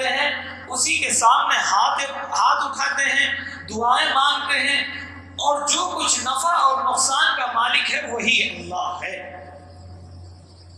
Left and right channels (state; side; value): identical; both; correlation 1.00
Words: ہیں، اسی کے سامنے ہاتھ اٹھاتے ہیں، دعائیں مانگتے ہیں، اور جو کچھ نفع اور نقصان کا مالک ہے وہی اللہ ہے۔